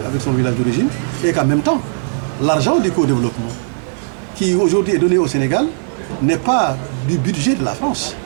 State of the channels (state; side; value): silent; left; digital silence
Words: village d'origine et qu'en même temps, l'argent du co-développement qui aujourd'hui est donné au Sénégal n'est pas du budget de la France,